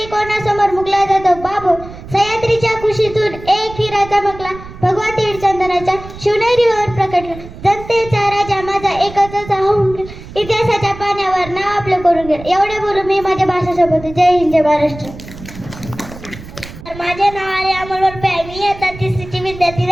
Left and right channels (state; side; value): noise; right; rumble, 15 dB below the sound